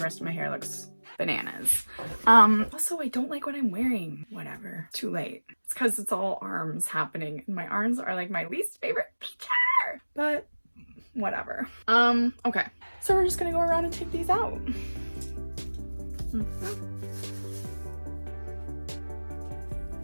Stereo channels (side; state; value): both; inverted; correlation -1.00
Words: rest of my hair looks bananas. Also, I don't like what I'm wearing. Whatever. Too late. It's because it's all arms happening, and my arms are like my least favorite feature. But whatever. Okay. So we're just gonna go around and take these out.